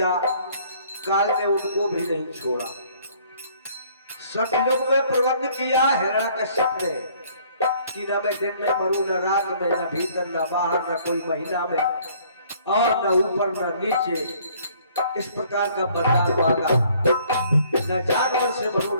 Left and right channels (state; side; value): inverted; both; correlation -0.59